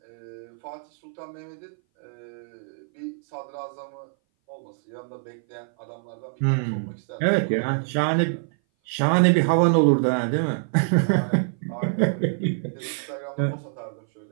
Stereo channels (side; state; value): left; silent; 58 dB below the other